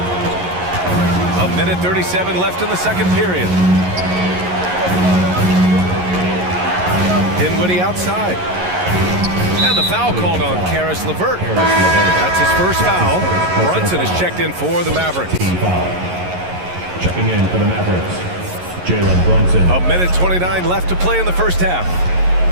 A minute 37 left in the second period. Dinwiddie outside. And the foul called on Caris LeVert. That's his first foul. Brunson is checked in for the Mavericks. Checking in for the Mavericks, Jalen Brunson. A minute 29 left to play in the first half.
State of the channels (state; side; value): late; left; 11 ms